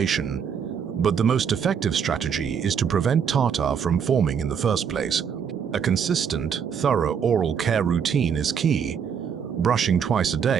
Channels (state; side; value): quieter; left; 7.3 dB